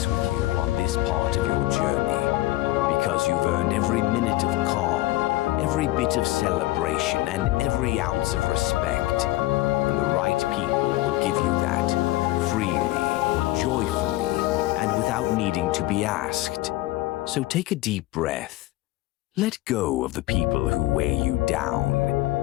with you on this part of your journey, because you've earned every minute of calm, every bit of celebration, and every ounce of respect. And the right people will give you that, freely, joyfully, and without needing to be asked. So take a deep breath. Let go of the people who weigh you down,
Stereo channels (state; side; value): quieter; right; 17.8 dB